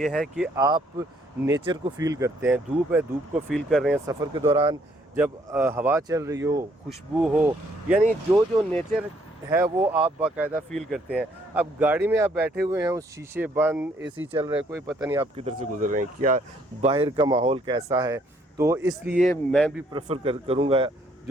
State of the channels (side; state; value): both; normal; correlation 0.66